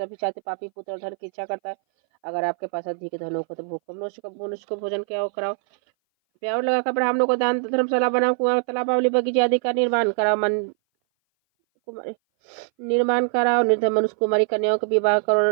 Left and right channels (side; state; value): left; silent; 59 dB below the other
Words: चाहते पापी पुत्र धन की इच्छा करता है। अगर आपके पास अधिक धन हो तो भूख मनुष्य को भोजन क्या कराओ, प्यार लगाकर ब्राह्मणों को दान, धर्मशाला बनाओ, कुआं तालाब बगीचे आदि का निर्माण कराओ, निर्धन मनुष्य कुमारी कन्याओं के विवाह